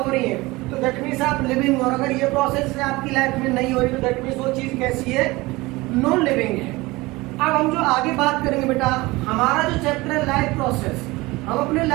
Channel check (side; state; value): left; quieter; 21.5 dB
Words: रही है तो दैट मीन्स आप लिविंग, और अगर ये प्रोसेस आपकी लाइफ में नहीं हो रही तो दैट मीन्स वो चीज कैसी है, नॉन लिविंग है। अब हम जो आगे बात करेंगे बेटा, हमारा जो चैप्टर है लाइफ प्रोसेस, हम अपने